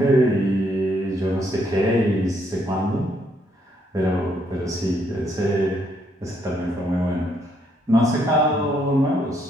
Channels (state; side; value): normal; both; correlation 0.72